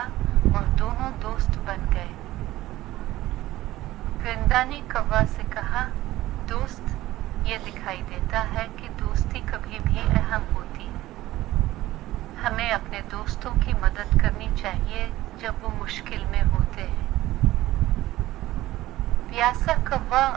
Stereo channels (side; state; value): left; quieter; 16.2 dB